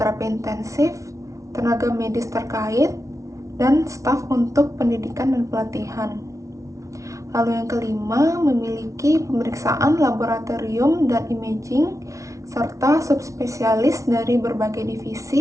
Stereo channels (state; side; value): late; left; 0.15 ms